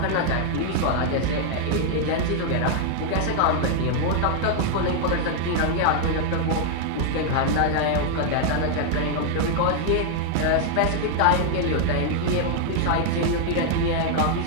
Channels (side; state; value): both; different; correlation 0.00